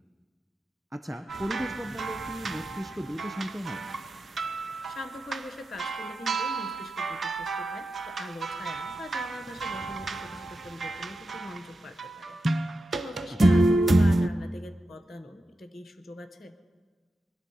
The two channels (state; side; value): normal; both; correlation 0.90